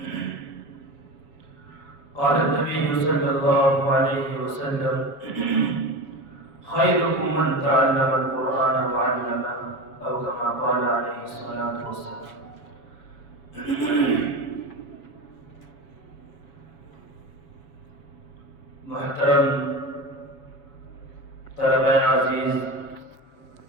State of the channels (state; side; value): late; right; 7.1 ms